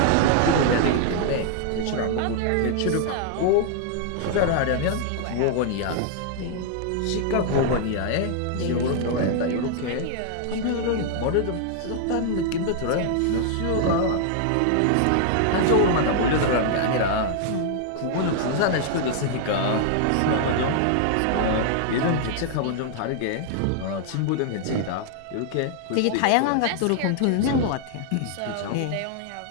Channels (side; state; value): both; different; correlation 0.00